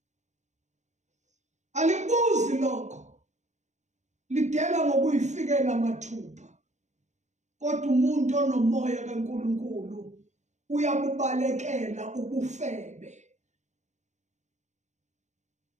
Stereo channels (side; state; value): left; late; 0.34 ms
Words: Alibuzi lokho. Lidela ngokuyifikela mathupha. Kodwa umuntu onomoya kaNkulunkulu uyabubalekela ubufebe.